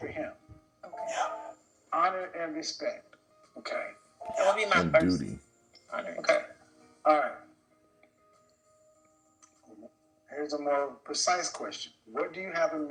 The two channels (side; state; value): both; identical; correlation 1.00